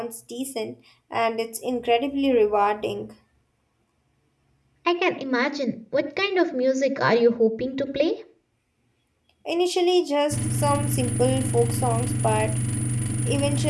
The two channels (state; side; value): identical; both; correlation 1.00